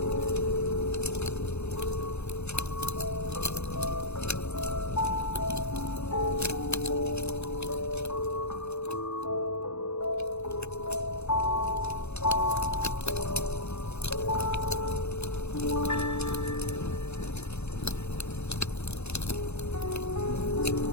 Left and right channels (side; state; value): right; late; 0.81 ms